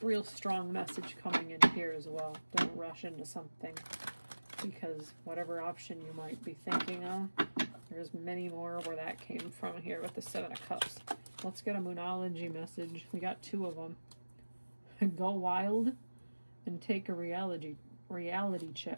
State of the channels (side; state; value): both; inverted; correlation -1.00